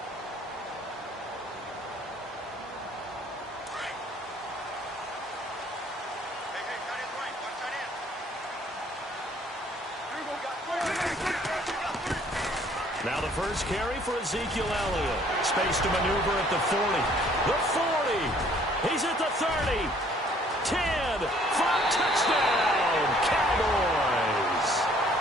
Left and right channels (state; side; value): normal; both; correlation 0.59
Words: Now the first carry for Ezekiel Elliott. Space to maneuver at the 40. The 40. He's at the 30. 10. 5. Touchdown. Cowboys.